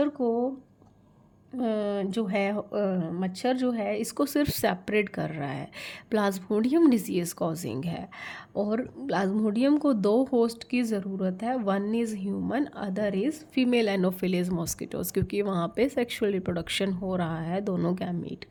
को जो है मच्छर जो है इसको सिर्फ सेपरेट कर रहा है, प्लाज्मोडियम डिजीज़ कॉजिंग है। और प्लाज्मोडियम को दो होस्ट की ज़रूरत है, one is human, other is female anopheles mosquitoes, क्योंकि वहाँ पे सेक्सुअल रिप्रोडक्शन हो रहा है दोनों गैमीट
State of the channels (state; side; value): identical; both; correlation 1.00